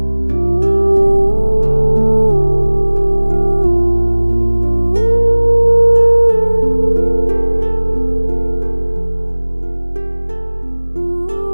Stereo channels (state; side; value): inverted; both; correlation -1.00